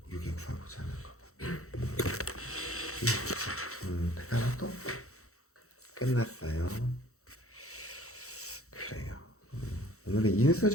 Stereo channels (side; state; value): right; late; 0.64 ms